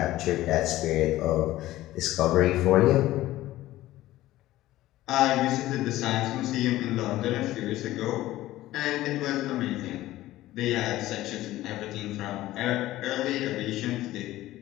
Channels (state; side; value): quieter; right; 15.8 dB